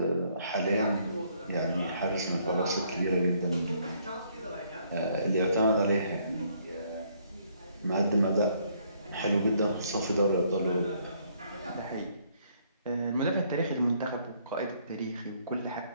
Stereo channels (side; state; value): both; inverted; correlation -0.67